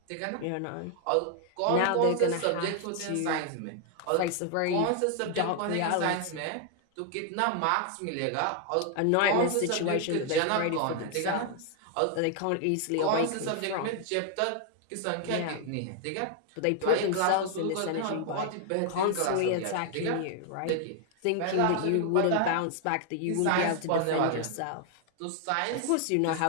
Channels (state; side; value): different; both; correlation 0.00